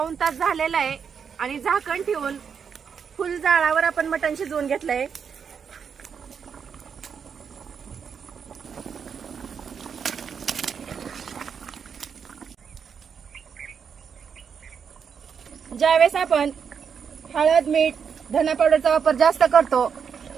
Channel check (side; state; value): left; quieter; 6.8 dB